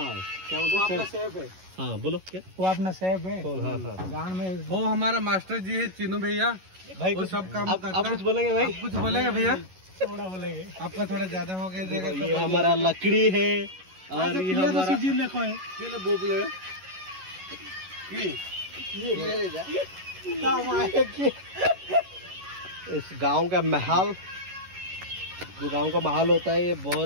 क्या बोलते हैं सेफ है हाँ बोलो क्या वो अपना सेफ है हाँ हाँ गांव में वो हमारा मास्टर जी है चिन्नू भैया भाई वो सब काम करता आप कुछ बोलेंगे भाई कुछ बोलेंगे भैया थोड़ा बोलेंगे आपका थोड़ा ज्यादा हो गया जगह ये हमारा लकड़ी है और ये हमारा सीजन देखो है किले बोबले इस गांव का महल जो गांव का महल होता है ये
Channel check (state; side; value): late; left; 11 ms